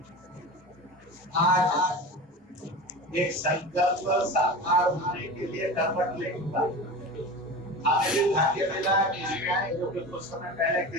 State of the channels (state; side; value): normal; both; correlation 0.31